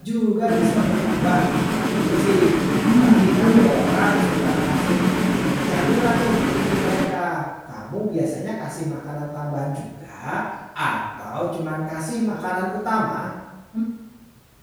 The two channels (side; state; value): both; identical; correlation 1.00